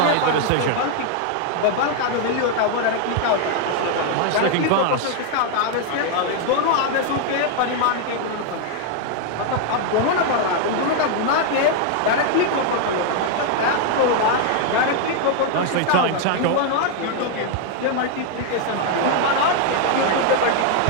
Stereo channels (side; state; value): both; different; correlation 0.00